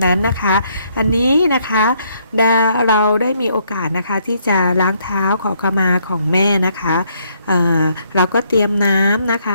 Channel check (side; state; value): both; inverted; correlation -0.70